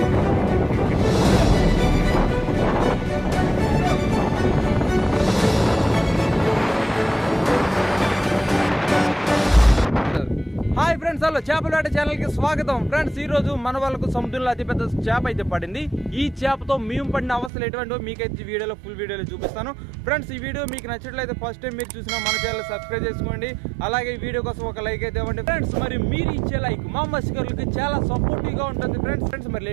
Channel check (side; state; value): left; drops out; at 17.5 s